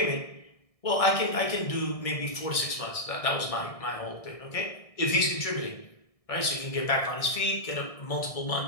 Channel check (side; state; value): right; late; 1.6 ms